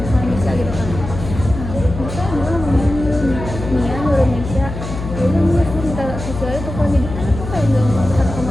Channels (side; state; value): left; noise; hum, 8 dB below the sound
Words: sama Misha gitu kan. Nah Misha dia ngomongin Nia nyuruh Misha, ya udah Nia gue minta Sisil itu kan jadi kan aku kayak nggak mau satu kamar